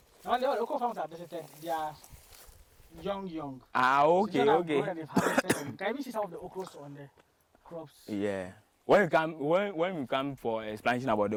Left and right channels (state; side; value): identical; both; correlation 1.00